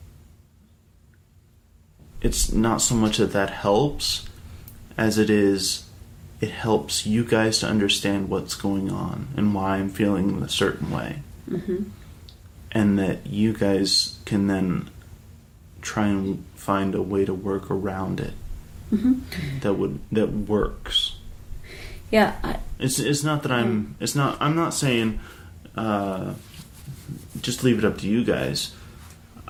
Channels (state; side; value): identical; both; correlation 1.00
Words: It's not so much that helps as it helps you guys to understand what's going on and why I'm feeling a certain way. Mm-hmm. And that you guys can then try and find a way to work around it. Mm-hmm. that works. Yeah. It's not that I'm not saying just leave it up to you guys.